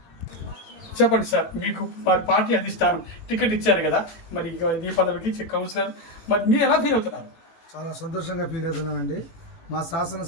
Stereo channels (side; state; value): right; late; 18 ms